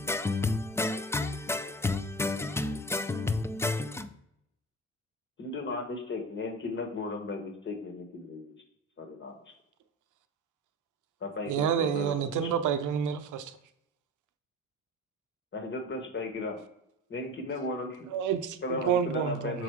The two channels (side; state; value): both; normal; correlation 0.30